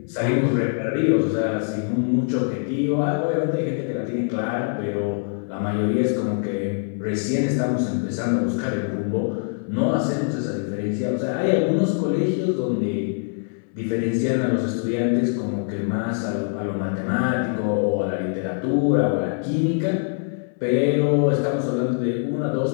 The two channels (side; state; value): right; silent; 62 dB below the other